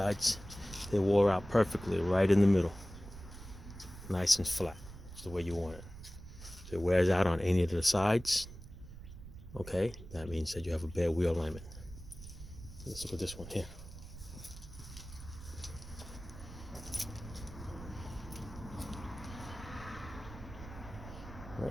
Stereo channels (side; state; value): right; noise; rumble, 14 dB below the sound